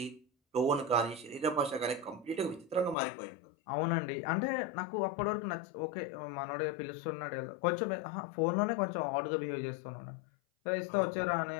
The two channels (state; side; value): drops out; right; at 3.0 s